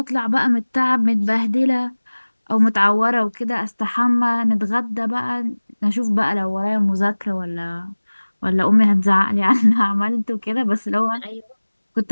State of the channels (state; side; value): inverted; both; correlation -1.00